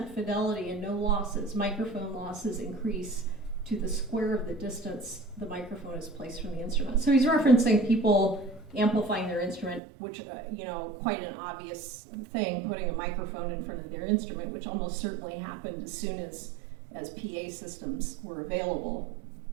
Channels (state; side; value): drops out; left; at 9.8 s